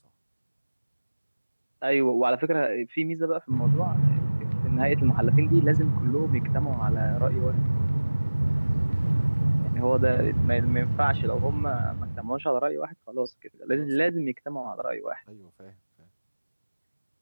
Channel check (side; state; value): both; inverted; correlation -1.00